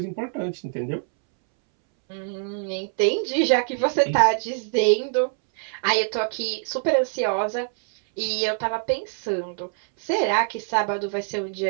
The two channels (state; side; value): silent; left; 62 dB below the other